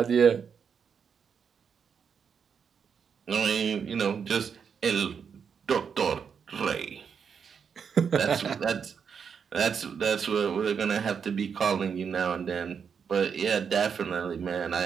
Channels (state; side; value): quieter; left; 6.7 dB